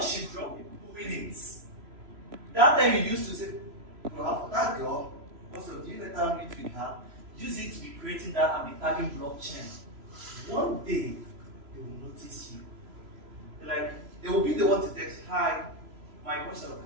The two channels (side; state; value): left; late; 3.0 ms